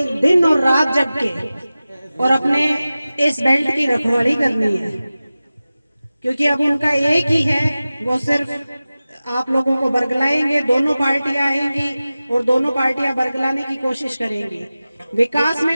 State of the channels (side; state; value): both; inverted; correlation -0.96